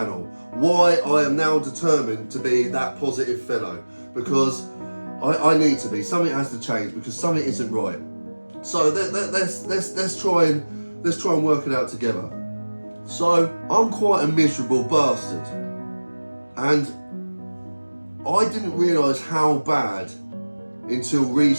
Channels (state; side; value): inverted; both; correlation -1.00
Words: Why I am now determined to be that positive fellow. Because I need to be. Something has to change because something isn't right. So let's try and work it out together. So I'm quite a miserable bastard, and I didn't realise how bad until